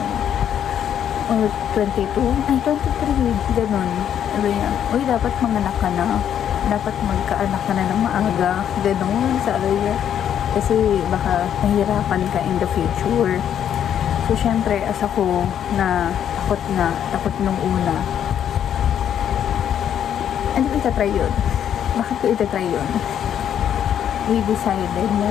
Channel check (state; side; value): quieter; right; 9.5 dB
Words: Or 22? Ay, 23. Ganon. Sabi niya, uy, dapat manganak ka na. Dapat magkaanak ka na ng maaga. Ganon, sabi niya. Kasi baka nahihirapan ka in the future. So, syempre, as ako na takot nung una. Ano ko itatry yun? Bakit ko itatry yun? We decided na